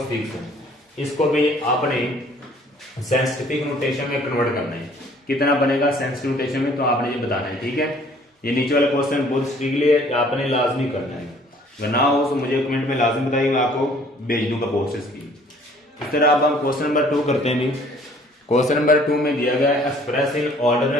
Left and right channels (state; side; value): normal; both; correlation 0.57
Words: इसको भी आपने सेंसिटिव नोटेशन में कन्वर्ट करना है। कितना बनेगा सेंसिटिव नोटेशन में, तो आपने ये बताना है। ठीक है, ये नीचे वाला क्वेश्चन बहुत स्ट्रिक्टली है, आपने लाजमी करना है। अगर ना हो तो मुझे कमेंट में लाजमी बताइए, मैं आपको भेज दूंगा प्रोसेस की। इस तरह अब हम क्वेश्चन नंबर 2 करते हैं। क्वेश्चन नंबर 2 में दिया गया है एक्सप्रेस इन